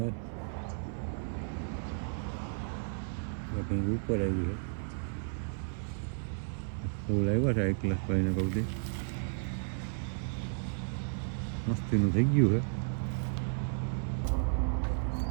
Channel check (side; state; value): left; silent; 55 dB below the other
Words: એક હિંગ ઉપર આવી છે. ફૂલ આવ્યા છે એક ક્લાસ ભાઈને કહું દે, મસ્તીનું થઈ ગયું છે.